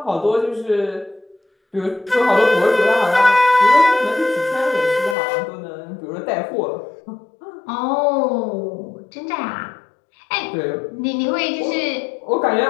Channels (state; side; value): drops out; right; at 5.2 s